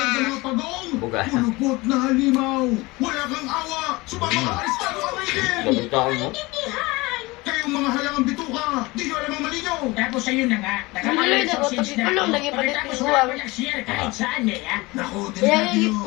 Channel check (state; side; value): quieter; right; 22.6 dB